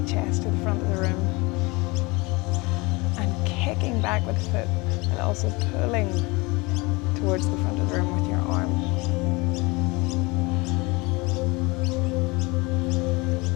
chest to the front of the room. And kicking back with the foot, and also pulling towards the front of the room with your arm.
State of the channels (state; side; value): quieter; right; 25.3 dB